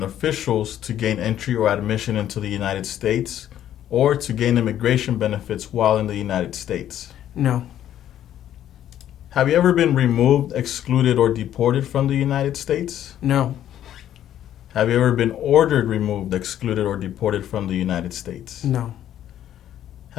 officials to gain entry or admission into the United States or to gain immigration benefits while in the United States? No. Have you ever been removed, excluded, or deported from the United States? No. Have you ever been ordered removed, excluded, or deported from the United States? No.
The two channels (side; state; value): right; quieter; 11.3 dB